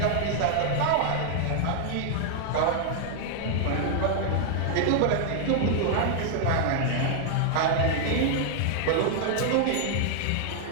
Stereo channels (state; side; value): different; both; correlation 0.00